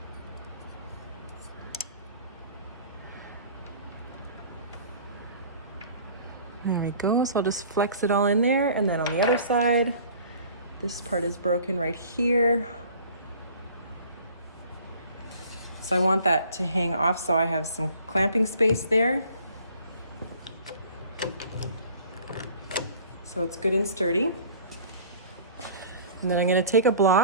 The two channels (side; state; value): both; inverted; correlation -0.49